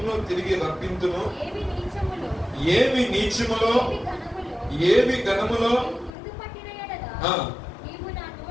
తిరిగి రప్పింతును. ఏవి నీచములో ఏవి ఘనములో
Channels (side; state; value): right; drops out; at 6.1 s